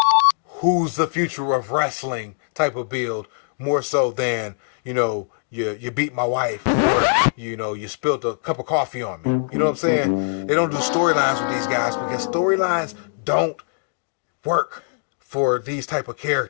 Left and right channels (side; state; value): right; silent; digital silence